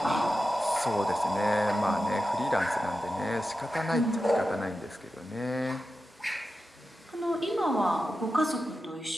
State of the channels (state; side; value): normal; both; correlation 0.91